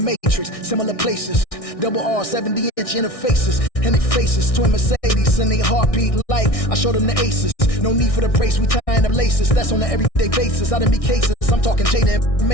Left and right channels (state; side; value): late; right; 1.6 ms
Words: Similar places. Double R, 70-inch interfaces. And they faces. Twin Mercedes and they heartbeat light. I showed them the aces. No need for the brace. We tying them laces. That's on an everyday basis. I done be cases. I'm talking Jada and